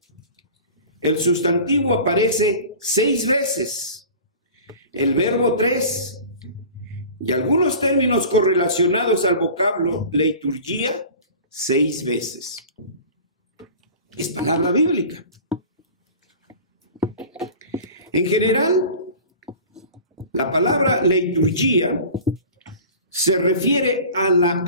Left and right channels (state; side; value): inverted; both; correlation -0.39